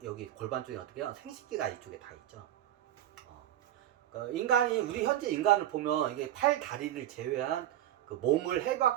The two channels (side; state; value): left; quieter; 12.5 dB